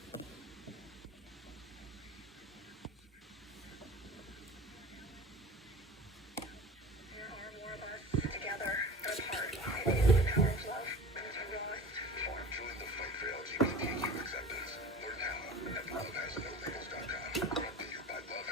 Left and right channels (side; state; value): both; normal; correlation 0.38